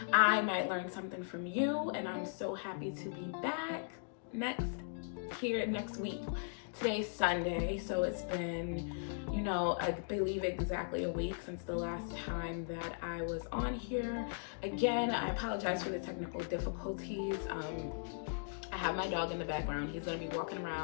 I might learn something from you. And I'm so happy to be back next week. Today's Sunday, so it's been, I believe exactly a week since the last time that I was on here. Again, I apologize for the technical difficulties. I have my dog in the background. He's gonna be walking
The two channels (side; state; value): right; silent; digital silence